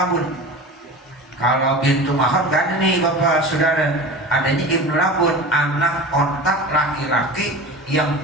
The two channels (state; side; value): normal; both; correlation 0.33